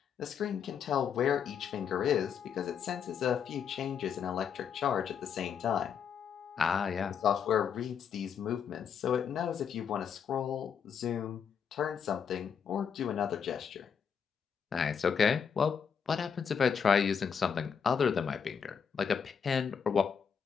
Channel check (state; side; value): quieter; right; 7.2 dB